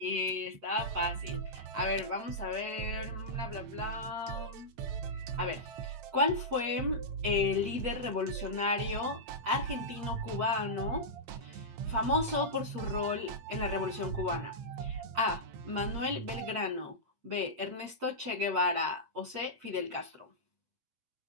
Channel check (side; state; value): left; late; 8.5 ms